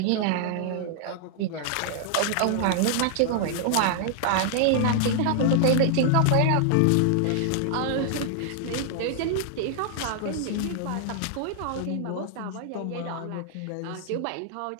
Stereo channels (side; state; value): both; different; correlation -0.01